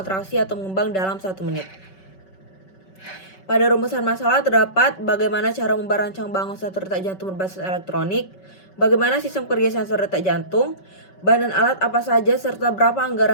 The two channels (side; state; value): right; late; 5.3 ms